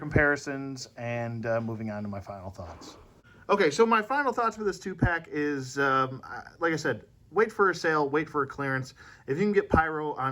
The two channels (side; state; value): both; identical; correlation 1.00